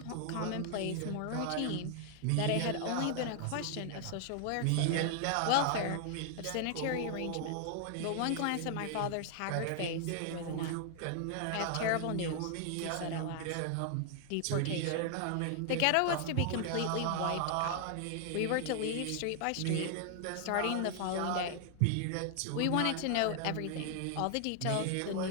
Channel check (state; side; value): different; both; correlation 0.00